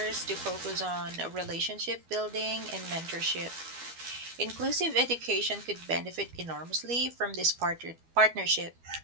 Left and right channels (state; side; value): late; left; 12 ms